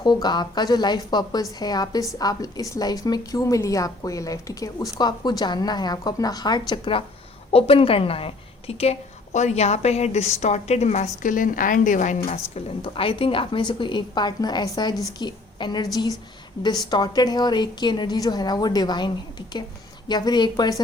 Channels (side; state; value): right; quieter; 3.0 dB